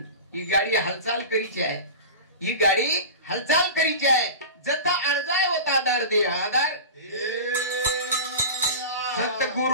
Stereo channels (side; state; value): both; inverted; correlation -0.30